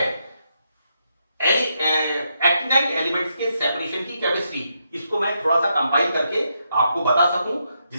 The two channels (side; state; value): both; inverted; correlation -0.80